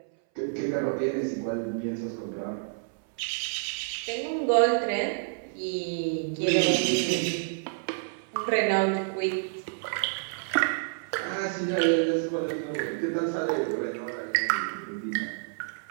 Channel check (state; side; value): silent; left; 59 dB below the other